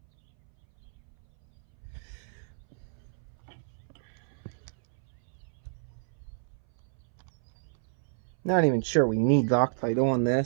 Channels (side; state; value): left; silent; 58 dB below the other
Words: Not even sure we need Loctite on